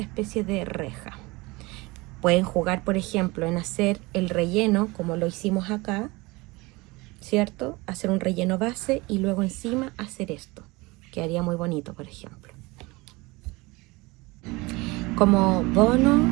especie de reja. Pueden jugar, por ejemplo, en hacer el relleno como lo hicimos acá, ¿cierto? Hacer un relleno base y luego encima hacer esto. Quedaría muy bonito, por ejemplo. Como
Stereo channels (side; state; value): left; quieter; 23.4 dB